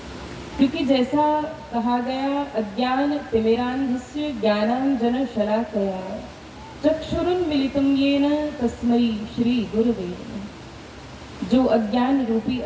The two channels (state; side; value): identical; both; correlation 1.00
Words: क्योंकि जैसा कहा गया अज्ञान तिमिरान्धस्य ज्ञानांजन शलाकया चक्षुरुन्मीलितं येन तस्मै श्री गुरुवे नमः। जो अज्ञान रूपी